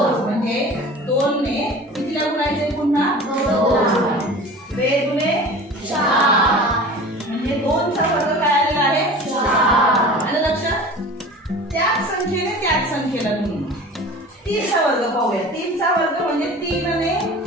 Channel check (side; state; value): both; normal; correlation 0.39